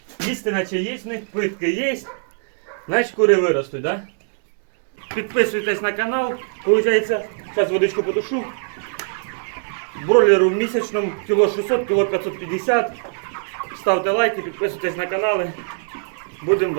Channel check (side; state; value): left; silent; digital silence